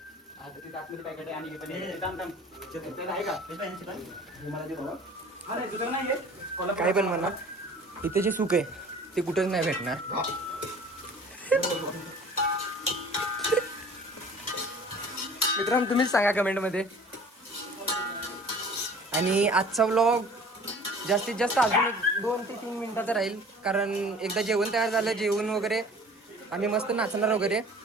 काय पण म्हणा, इथे जे सुख आहे ते कुठंच नाही भेटणार. मित्रांनो तुम्हीच सांगा कमेंटमध्ये. आणि आजचा व्लॉग जास्तीत जास्त अजून एक 2 ते 3 मिनिटाचं राहील, कारण एकदा जेवण तयार झालं, जेवण वगैरे आम्ही मस्त नाचणार वगैरे.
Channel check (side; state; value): both; normal; correlation 0.47